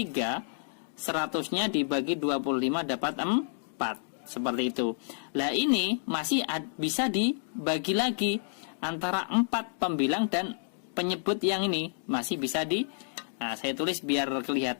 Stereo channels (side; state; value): right; silent; digital silence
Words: 100-nya dibagi 25 dapat 4. Seperti itu. Nah, ini masih bisa dibagi lagi antara 4 pembilang dan penyebut yang ini masih bisa saya tulis biar